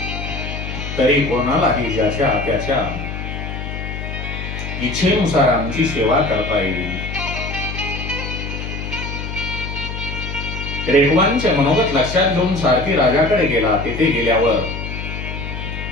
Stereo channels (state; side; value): noise; left; hum, 6 dB below the sound